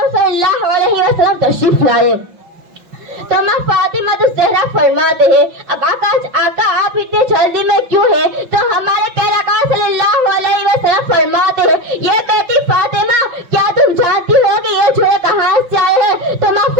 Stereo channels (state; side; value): late; left; 5.7 ms